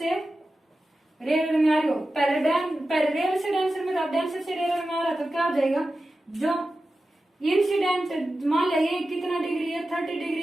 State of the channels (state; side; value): normal; both; correlation 0.93